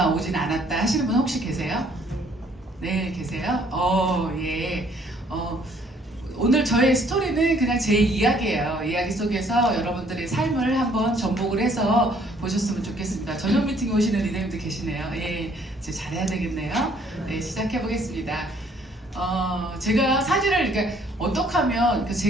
오진 않았다 하시는 분 혹시 계세요? 네, 계세요? 예. 오늘 저의 스토리는 그냥 제 이야기예요. 이야기 속에서 여러분들의 삶을 한번 접목을 해서 보셨으면 좋겠습니다. 저녁 미팅에 오시는 리더님들 계시네요. 예, 이제 잘해야 되겠네요. 네, 시작해 보겠습니다. 제가 사진을 그러니까 어떻게 하면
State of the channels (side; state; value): both; normal; correlation 0.62